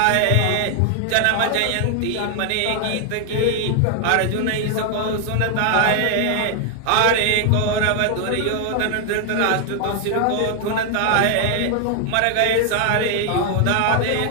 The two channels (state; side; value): different; both; correlation 0.00